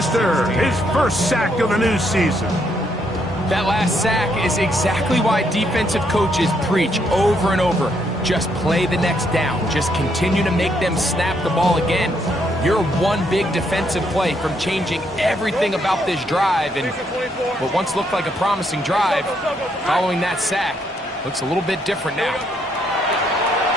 his first sack of the new season. That last sack is exactly why defensive coaches preach over and over. Just play the next down. Just continue to make them snap the ball again. You're one big defensive play from changing everything about this drive, and what once looked like a promising drive, following that sack, looks a little bit different now.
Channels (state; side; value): normal; both; correlation 0.74